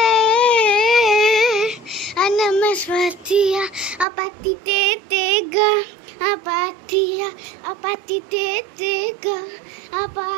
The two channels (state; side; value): drops out; left; at 4.0 s